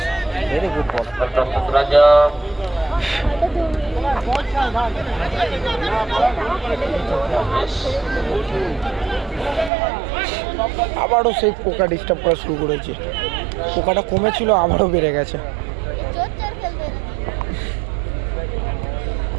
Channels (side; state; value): left; drops out; at 9.7 s